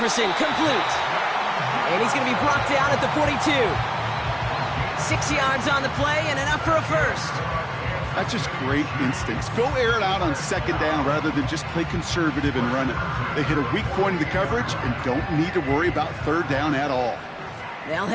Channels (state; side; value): identical; both; correlation 1.00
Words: complete. And he's going to be brought down at the 42. 6 yards on the play and enough for a first. That's just great instincts. Go air it out on 2nd down rather than just play conservative and run it. They hit a weak point in the coverage and don't need to worry about 3rd down at all. They'll